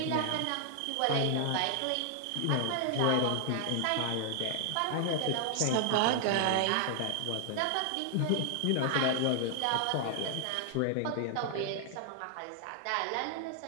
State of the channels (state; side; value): different; both; correlation 0.00